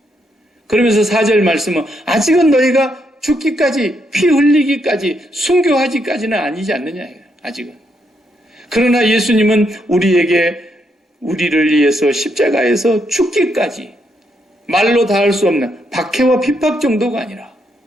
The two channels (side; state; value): both; normal; correlation 0.77